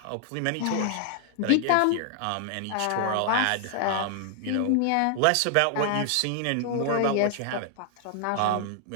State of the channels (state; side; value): different; both; correlation 0.00